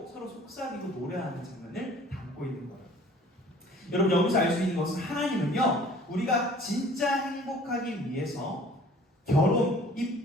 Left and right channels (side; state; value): both; normal; correlation 0.50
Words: 서로 속삭이고 노래하는 장면을 담고 있는 거예요. 여러분 여기서 알 수 있는 것은 하나님은요 우리가 진짜 행복하기 위해서 결혼, 이